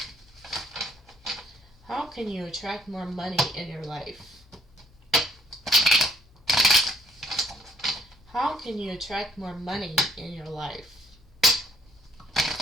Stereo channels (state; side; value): normal; both; correlation 0.63